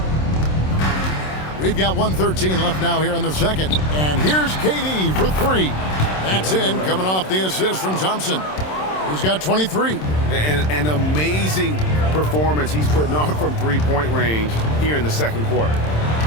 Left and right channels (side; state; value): right; late; 27 ms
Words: We've got 1:13 left now here in the second. And here's KD for 3. That's in, coming off the assist from Thompson, who's got 23. An amazing performance he's putting on from 3-point range here in the second quarter.